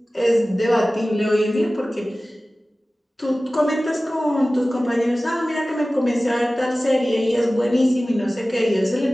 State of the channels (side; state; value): both; normal; correlation 0.97